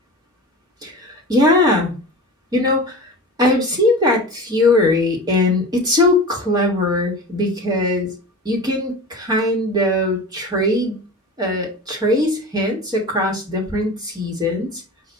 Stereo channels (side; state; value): both; normal; correlation 0.32